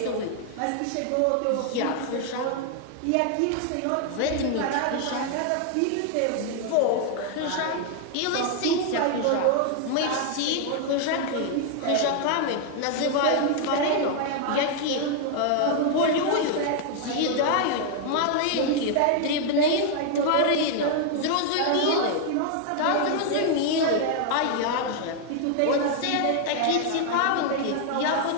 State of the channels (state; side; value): different; both; correlation 0.00